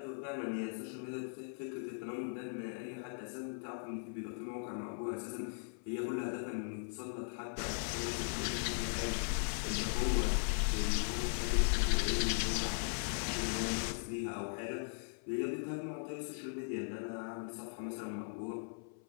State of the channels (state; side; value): silent; right; 52 dB below the other